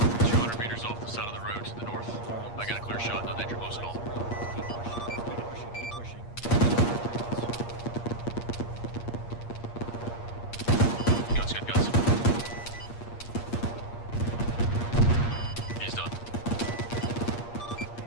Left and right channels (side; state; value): right; late; 8.5 ms